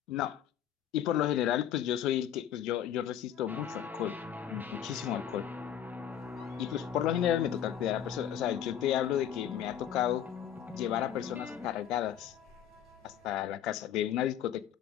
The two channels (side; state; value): right; quieter; 10.0 dB